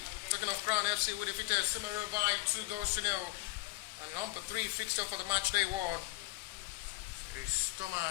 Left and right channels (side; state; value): right; quieter; 21.3 dB